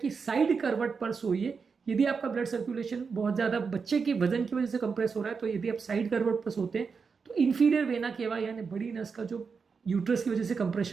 साइड करवट पर सोइए। यदि आपका ब्लड सर्कुलेशन बहुत ज़्यादा बच्चे के वजन की वजह से कंप्रेस हो रहा है तो यदि आप साइड करवट पर सोते हैं तो इंफीरियर वेना केवा यानी बड़ी नस का जो यूट्रस की वजह से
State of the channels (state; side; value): quieter; left; 5.4 dB